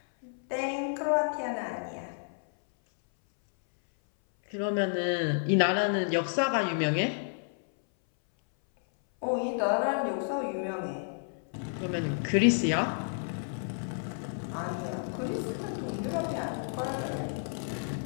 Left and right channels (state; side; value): silent; right; 57 dB below the other